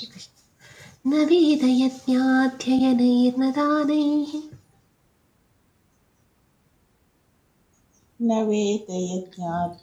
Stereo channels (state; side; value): identical; both; correlation 1.00